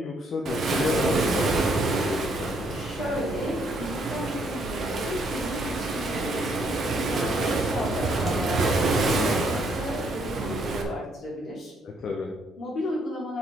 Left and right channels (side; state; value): both; normal; correlation 0.70